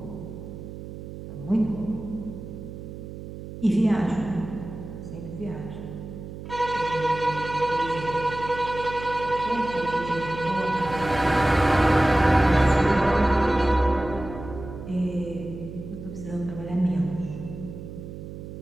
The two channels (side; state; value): right; noise; hum, 11 dB below the sound